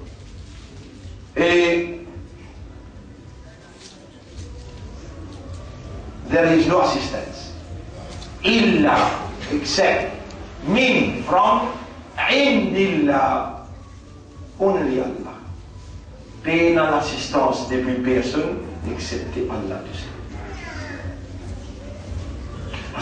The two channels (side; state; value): both; identical; correlation 1.00